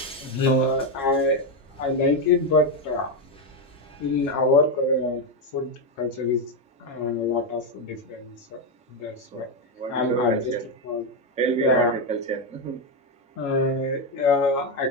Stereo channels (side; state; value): both; normal; correlation 0.07